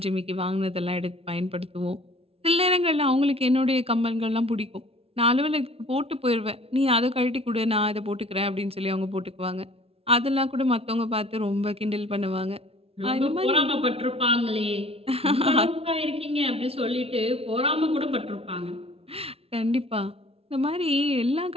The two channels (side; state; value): left; late; 0.28 ms